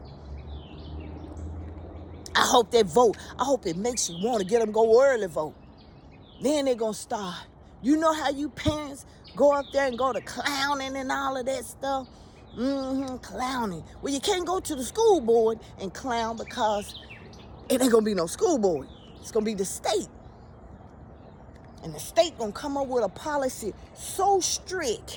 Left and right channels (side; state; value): both; identical; correlation 1.00